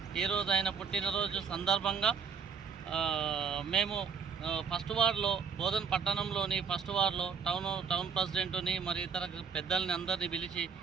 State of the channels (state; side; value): quieter; left; 5.9 dB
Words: ఈరోజు ఆయన పుట్టినరోజు సందర్భంగా మేము ఫస్ట్ వార్డులో బోధన్ పట్టణంలోని ఫస్ట్ వార్డులో టౌన్ ప్రెసిడెంట్ని మరి ఇతర పెద్దల్ని అందరినీ పిలిచి